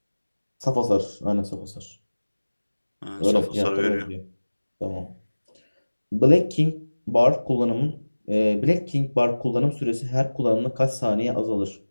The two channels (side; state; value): both; inverted; correlation -1.00